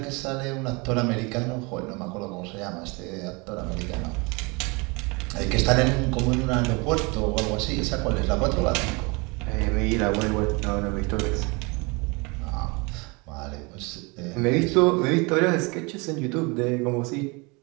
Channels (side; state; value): left; quieter; 28.3 dB